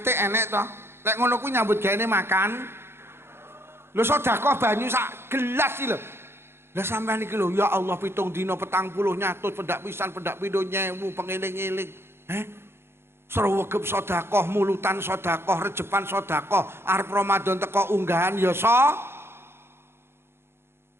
enek to. Lek ngono kuwi nyambut gaene makan. Lho sedekah banyu sak gelas iki lho. Lah sampean iki lho ya Allah 7 dina 40 nyatus pendak pisan pendak pindho nyewu pengeling-eling. Srewegep sedekah, mulutan sedekah, rejepan sedekah, arep Ramadan teko unggahan ya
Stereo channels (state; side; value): late; left; 0.12 ms